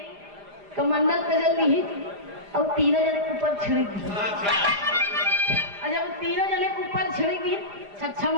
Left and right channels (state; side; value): late; left; 4.9 ms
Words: कमंडल कजल ली और तीनों जने के ऊपर छिड़क दी। और जब तीनों जने के ऊपर छिड़क दी, 6